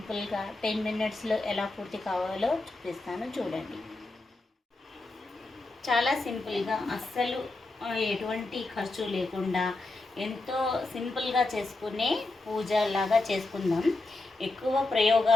10 మినిట్స్లో ఎలా పూర్తి కావాలో చూపిస్తాను, చూడండి. చాలా సింపుల్గా, అస్సలు ఎటువంటి ఖర్చు లేకుండా ఎంతో సింపుల్గా చేసుకునే పూజ లాగా చేసుకుందాం. ఎక్కువ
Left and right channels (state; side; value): quieter; right; 3.1 dB